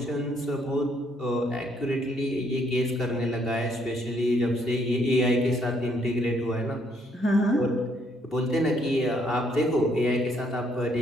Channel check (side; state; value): both; normal; correlation 0.69